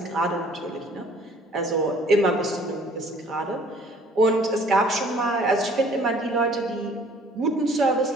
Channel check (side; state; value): both; normal; correlation 0.55